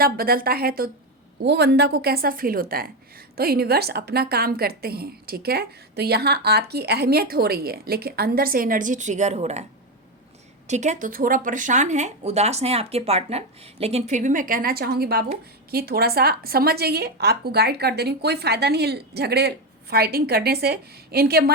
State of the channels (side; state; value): both; normal; correlation 0.11